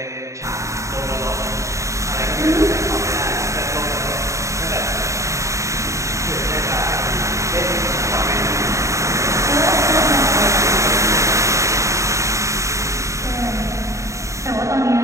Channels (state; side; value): late; left; 0.15 ms